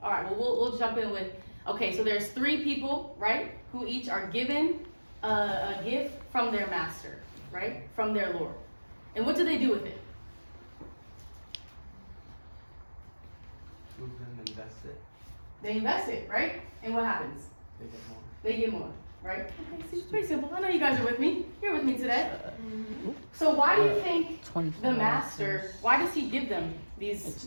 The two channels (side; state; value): both; inverted; correlation -1.00